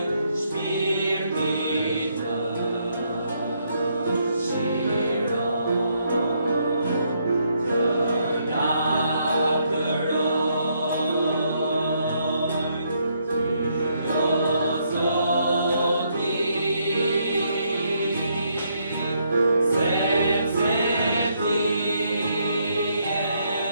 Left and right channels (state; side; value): inverted; both; correlation -0.74